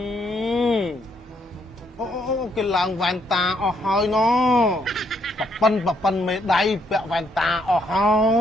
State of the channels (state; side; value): normal; both; correlation 0.72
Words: គេឡើងវ៉ែនតាអស់ហើយណប៉ិនមេដៃពាក់វ៉ែនតាអស់ហើ